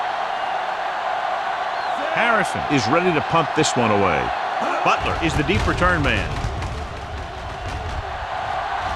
Harrison is ready to punt this one away. Butler is the deep return man.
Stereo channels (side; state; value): both; identical; correlation 1.00